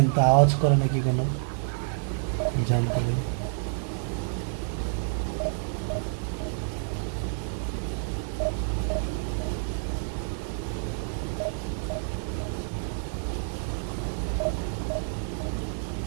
তো আওয়াজ করে নাকি কোনো জানতে ভাই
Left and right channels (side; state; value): left; silent; digital silence